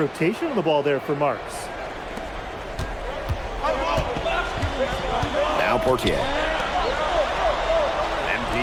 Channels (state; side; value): identical; both; correlation 1.00